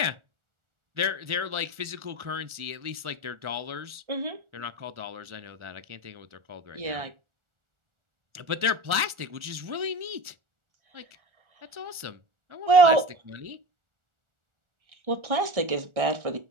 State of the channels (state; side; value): late; left; 1.4 ms